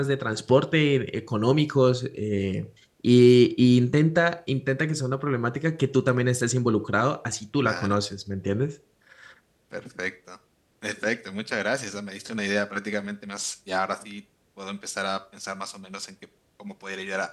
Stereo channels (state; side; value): identical; both; correlation 1.00